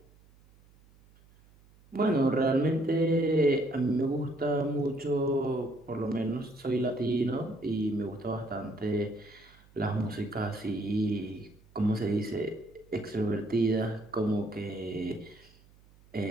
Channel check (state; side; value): noise; right; hum, 28 dB below the sound